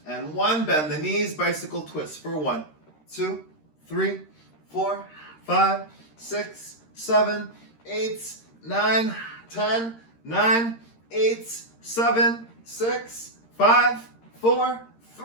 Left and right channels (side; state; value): right; late; 13 ms